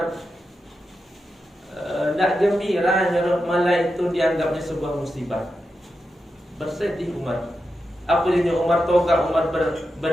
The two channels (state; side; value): normal; both; correlation 0.88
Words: tidak gembira, malah itu dianggapnya sebuah musibah. Bersedih Umar. Apa dia Umar toga, Umar